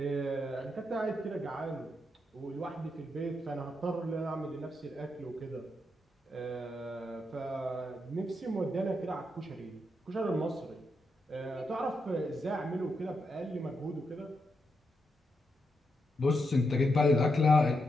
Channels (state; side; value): normal; both; correlation 0.83